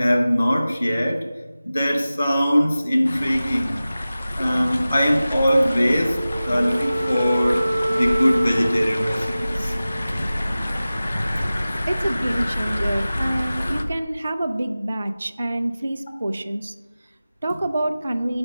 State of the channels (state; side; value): inverted; both; correlation -0.96